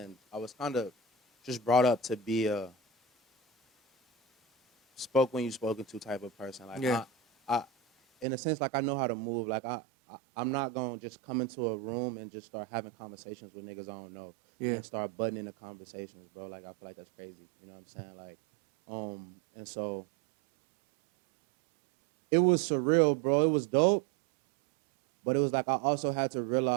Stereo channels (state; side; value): drops out; left; at 8.2 s